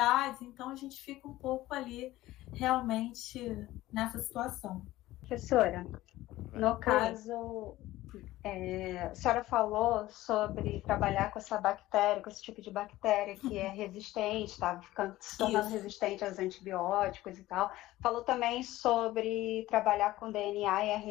então a gente fica um pouco ali realmente nessa situação. Professora, no caso, a senhora falou sobre trabalhar com essa bactéria, com esse tipo de bactéria que é resistente, está se tornando resistente aos antibióticos e tal. Falou também sobre trabalhar com DNA e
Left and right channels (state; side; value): quieter; right; 16.5 dB